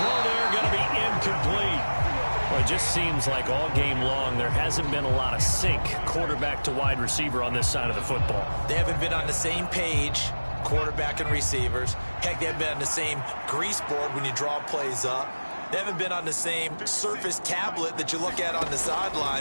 there going to be incomplete. Well, it just seems like all game long there hasn't been a lot of sync quarterback to wide receiver on this side of the football. They haven't been on the same page, quarterback and receivers. Heck, they haven't been on the same grease board when you draw plays up. They haven't been on the same Surface tablet that you look at on the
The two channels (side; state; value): both; inverted; correlation -1.00